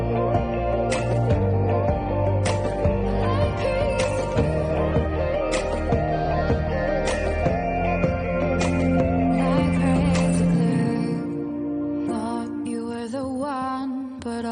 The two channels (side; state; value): both; identical; correlation 1.00